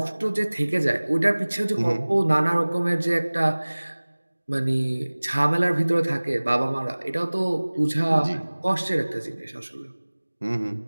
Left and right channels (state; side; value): inverted; both; correlation -1.00